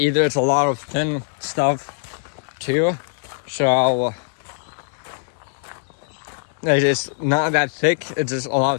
It's a lot of thin stuff too. So it's not that thick. It's just a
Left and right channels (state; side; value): silent; right; digital silence